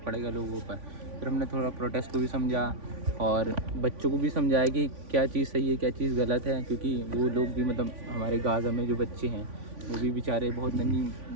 पड़ेगा लोगों पर। फिर हमने थोड़ा प्रोटेस्ट को भी समझा और बच्चों को भी समझाया कि क्या चीज़ सही है क्या चीज़ गलत है, क्योंकि वो लोग भी मतलब हमारे गाज़ा में जो बच्चे हैं वो भी बेचारे बहुत नन्ही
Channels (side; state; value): left; late; 3.5 ms